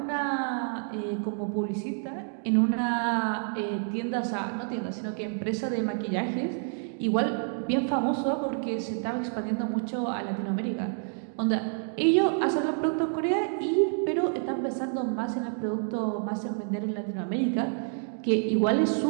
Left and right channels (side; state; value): left; silent; 57 dB below the other